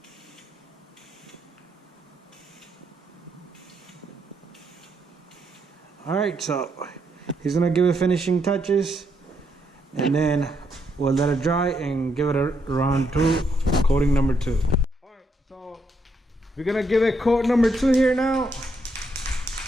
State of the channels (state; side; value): normal; both; correlation 0.76